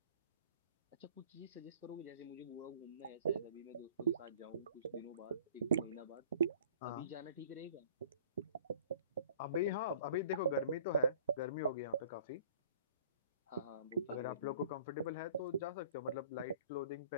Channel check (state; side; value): inverted; both; correlation -0.50